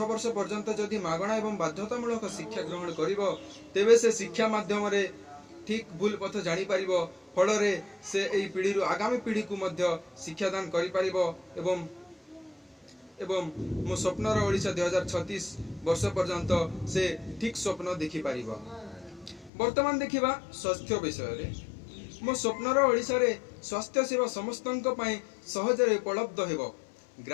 वर्ष पर्यंत जदि मागणा एवं बाध्यतामूलक शिक्षा ग्रहण करिवो तेबे से शिक्षा माध्यम रे ठीक भूल पथ जानी पारिबो फल रे से एई पीढ़ी रु आगामी पीढ़ी को मध्य शिक्षादान करि पारिबो एवं मो स्वप्नर ओडिशा 2036 वर्ष पर्यंत से ठीक स्वप्न देखि पारिबो। वर्तमान देखिबा स्वास्थ्य विषय रे मो स्वप्नर ओडिशा रे स्वास्थ्य सेवा समस्तंक पई सहज रे उपलब्ध हेबो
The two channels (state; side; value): drops out; right; at 19.5 s